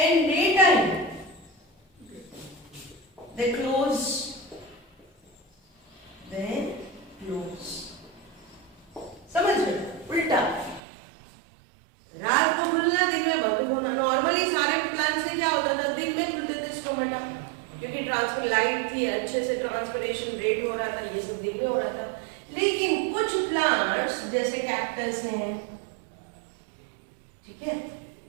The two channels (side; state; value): left; drops out; at 10.8 s